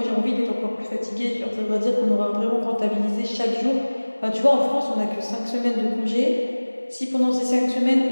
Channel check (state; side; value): inverted; both; correlation -1.00